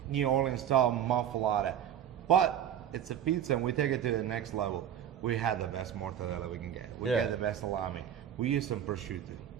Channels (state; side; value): quieter; left; 9.9 dB